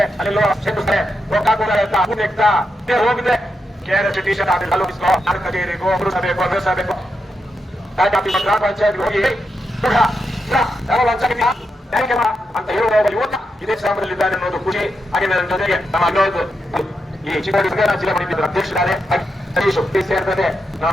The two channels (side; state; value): both; normal; correlation 0.85